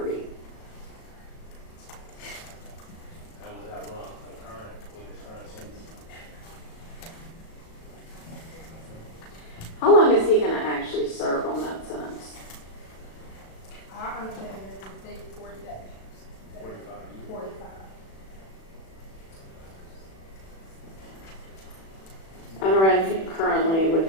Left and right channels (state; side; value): late; right; 37 ms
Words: And would that run concurrent with his current sentence? How long is he going to actually serve on that sentence? I understand it is they 40 days. 45 years. 45. And run currently with